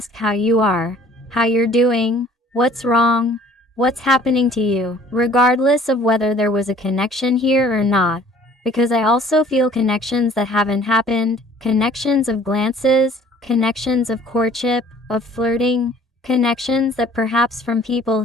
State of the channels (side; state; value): both; normal; correlation 0.53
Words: how you are, how you're doing, what's wrong, what's happening to you, regardless of whether there was a connection here or not, because I also feel connections that haven't happened, connections of glances, connections of courtship, of flirting, connections that perhaps from